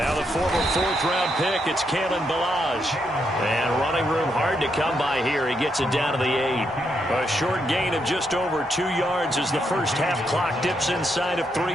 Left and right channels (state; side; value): normal; both; correlation 0.79